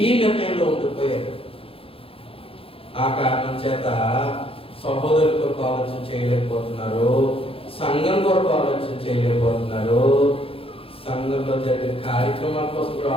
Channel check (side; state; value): right; late; 0.27 ms